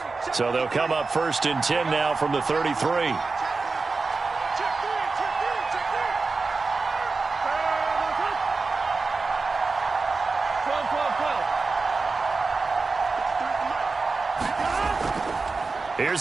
So they'll come up 1st and 10 now from the 33.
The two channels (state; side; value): quieter; left; 4.1 dB